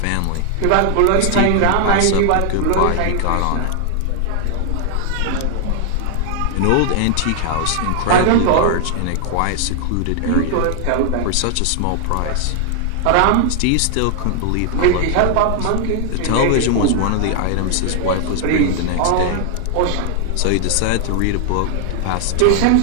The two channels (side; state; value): both; different; correlation 0.00